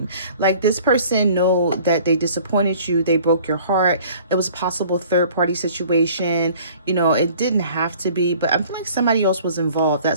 Like this person know that they disappointed you. They broke your heart. It was a possible third party situation. You know, it didn't have to be, but I feel like somebody else was involved.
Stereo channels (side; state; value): both; inverted; correlation -0.51